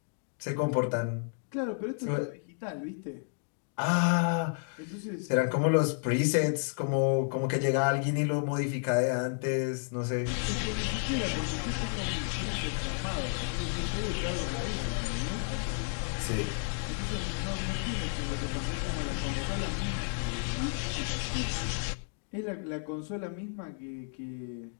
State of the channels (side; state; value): right; silent; 57 dB below the other